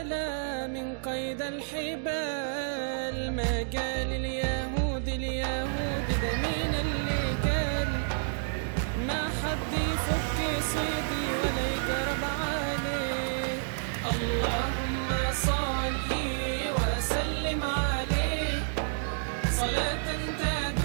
من قيد الحبال. ما قال اليهود ده مين اللي قال؟ ما حد يفك صيدي ولا يقرب عليه. اللهم صل وسلم عليه صلاة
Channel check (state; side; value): silent; left; digital silence